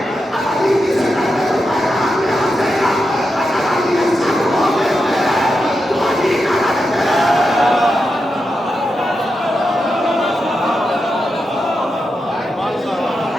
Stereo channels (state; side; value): normal; both; correlation 0.87